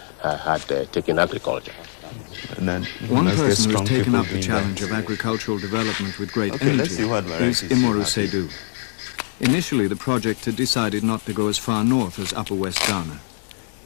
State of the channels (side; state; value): right; silent; digital silence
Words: had taken agriculture. One person who has taken up the challenge of agricultural development with great energy is Imoru Seydou. Initially, the project had decided not to go as far north as Upper West Ghana.